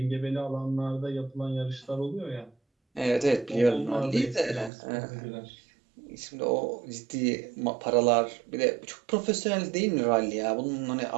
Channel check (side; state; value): left; drops out; at 4.7 s